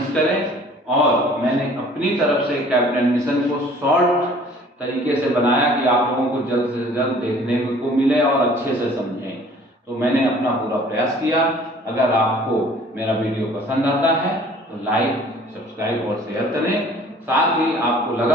करें, और मैंने अपनी तरफ से कैबिनेट मिशन को शॉर्ट तरीके से बनाया कि आप लोगों को जल्द से जल्द देखने को मिले और अच्छे से समझें। तो मैंने अपना पूरा प्रयास किया। अगर आपको मेरा वीडियो पसंद आता है तो लाइक, सब्सक्राइब और शेयर करें। साथ ही आपको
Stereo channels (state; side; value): normal; both; correlation 0.52